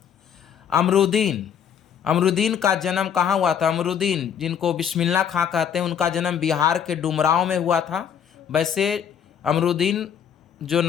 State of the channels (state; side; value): quieter; right; 8.4 dB